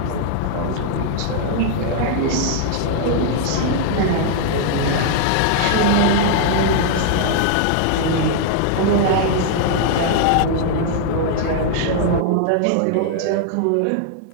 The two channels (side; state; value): both; different; correlation -0.01